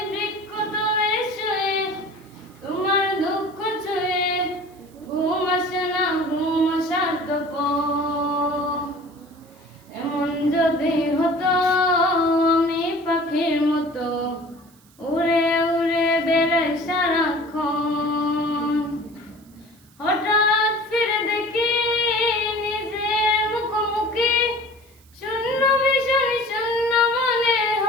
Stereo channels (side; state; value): right; noise; hiss, 29 dB below the sound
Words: বৃক্ষতলে শুয়ে তোমার দুঃখ ছুঁয়ে, ঘুম আসে না, ঘুম আসার তো পর। এমন যদি হতো আমি পাখির মতো উড়ে উড়ে বেড়াই সারাক্ষণ, হঠাৎ ফিরে দেখি নিজের মুখোমুখি, শূন্য ভীষণ শূন্য মনে